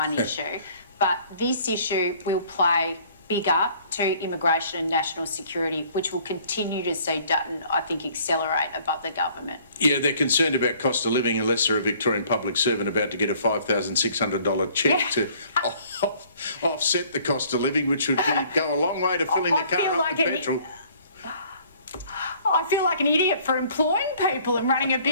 issue. But this issue will play bigger to immigration and national security, which will continue to see Dutton, I think, accelerate above the government. Yeah, they're concerned about cost of living unless they're a Victorian public servant about to get a $5,600 cheque to offset the cost of living, which would go a long way to filling the car up with petrol. I feel like an idiot for employing people and running a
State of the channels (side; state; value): both; inverted; correlation -0.56